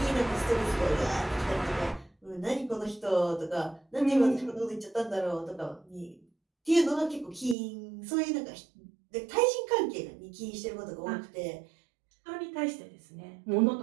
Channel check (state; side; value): drops out; left; at 7.6 s